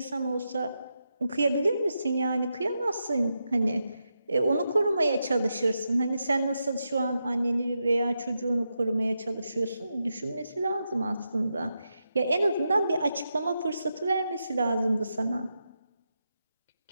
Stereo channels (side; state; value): both; inverted; correlation -0.86